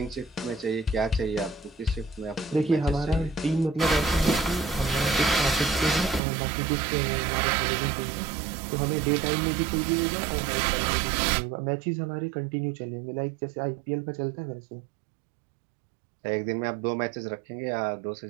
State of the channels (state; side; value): drops out; left; at 6.2 s